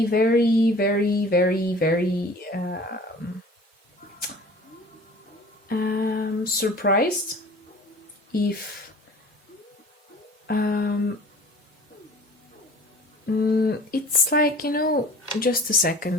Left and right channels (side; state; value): both; normal; correlation 0.45